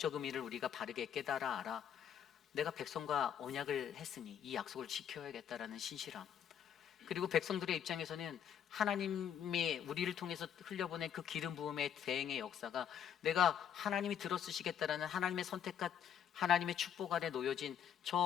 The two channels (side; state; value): right; quieter; 8.8 dB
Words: 의미를 우리가 바르게 깨달아 알아 내가 백성과 언약을 했으니 이 약속을 지켜야겠다라는 신실함, 그리고 백성들의 입장에서는 하나님이 우리를 통해서 흘려보낸 그 기름 부음의 대행의 역사가 내가 하나님이 들어쓰시겠다라는 하나님의 선택과 하나님의 축복 아래 놓여진